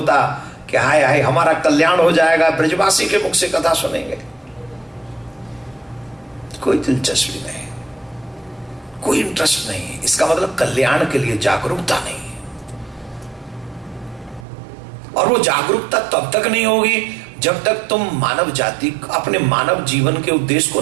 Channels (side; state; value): left; drops out; at 14.5 s